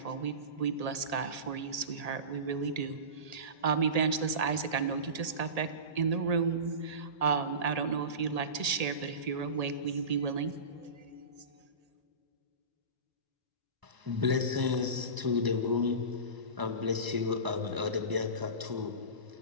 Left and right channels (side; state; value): left; late; 1.8 ms